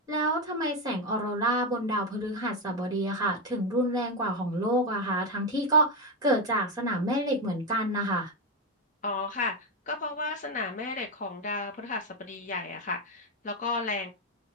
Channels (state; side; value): normal; both; correlation 0.09